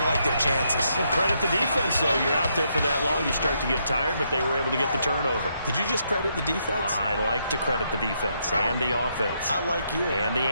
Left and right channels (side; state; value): both; inverted; correlation -0.77